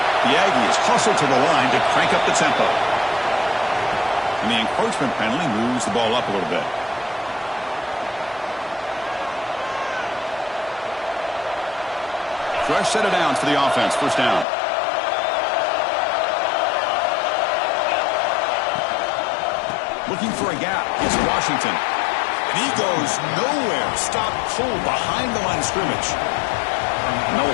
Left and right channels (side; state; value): right; drops out; at 14.5 s